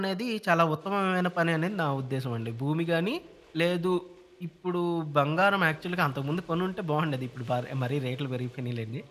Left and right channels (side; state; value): both; identical; correlation 1.00